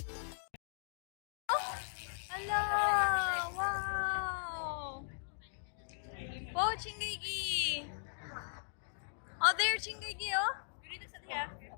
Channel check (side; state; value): right; silent; digital silence